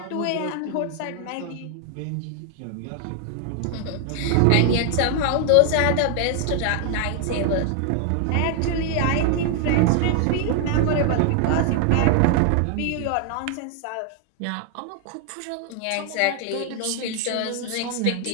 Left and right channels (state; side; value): different; both; correlation 0.00